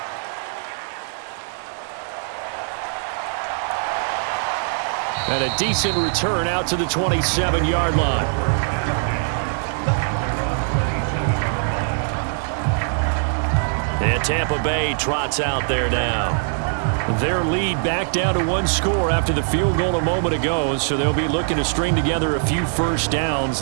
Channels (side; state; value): left; silent; 64 dB below the other